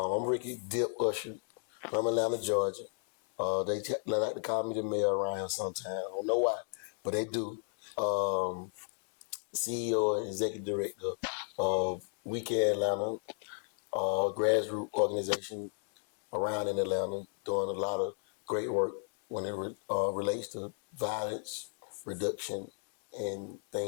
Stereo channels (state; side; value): silent; right; 55 dB below the other